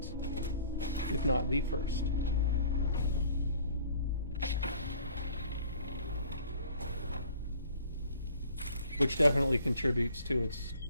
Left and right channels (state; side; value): inverted; both; correlation -0.53